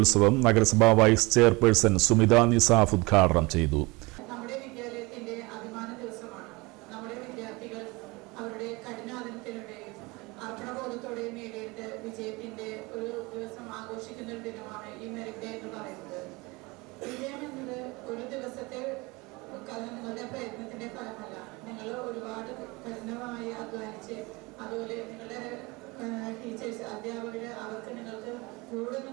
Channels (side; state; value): left; quieter; 24.5 dB